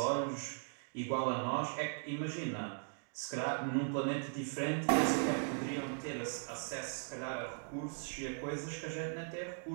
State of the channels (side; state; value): left; silent; 52 dB below the other